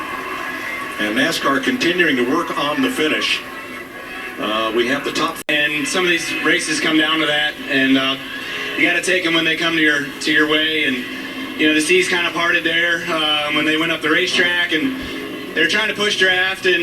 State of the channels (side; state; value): both; identical; correlation 1.00